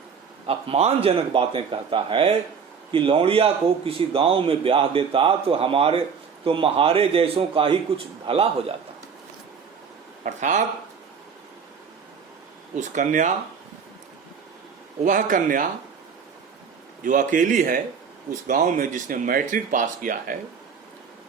अपमानजनक बातें कहता है कि लौंडिया को किसी गांव में ब्याह देता तो महारे जैसों का ही कुछ भला हो जाता। अर्थात वह कन्या जो अकेली है उस गांव में, जिसने मैट्रिक पास किया है,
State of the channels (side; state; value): left; quieter; 6.3 dB